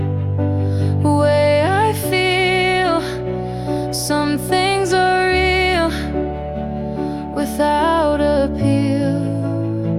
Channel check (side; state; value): both; identical; correlation 1.00